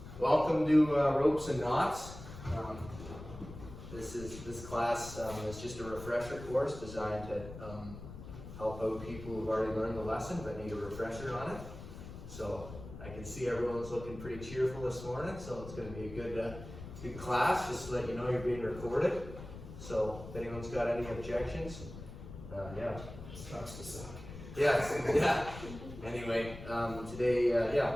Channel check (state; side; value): noise; left; rumble, 13 dB below the sound